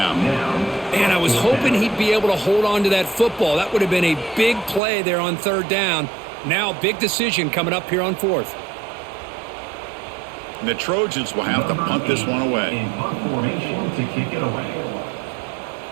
Man, I was hoping he'd be able to hold on to that football. That would have been a big play there on 3rd down. Now, big decision coming up here on 4th. And the Trojans will have to punt this one away. In punt formation to kick it away.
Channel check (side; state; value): left; drops out; at 4.8 s